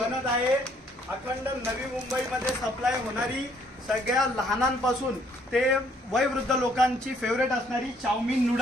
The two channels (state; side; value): normal; both; correlation 0.65